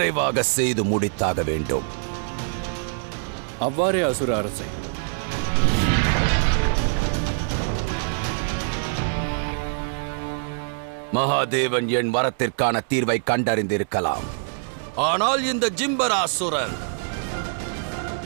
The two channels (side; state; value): left; silent; 63 dB below the other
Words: செய்து முடித்தாக வேண்டும். அவ்வாறே அசுர அரசே. மகாதேவன் என் வரத்திற்கான தீர்வை கண்டறிந்திருக்கலாம். ஆனால் இந்த ஜிம்பராசுரன்